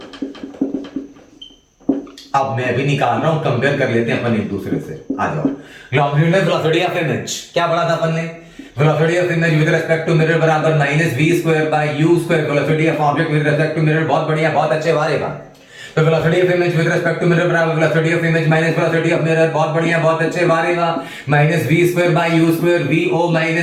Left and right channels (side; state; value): both; identical; correlation 1.00